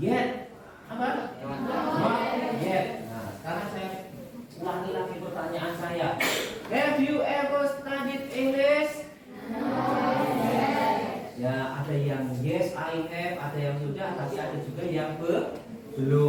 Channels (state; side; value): identical; both; correlation 1.00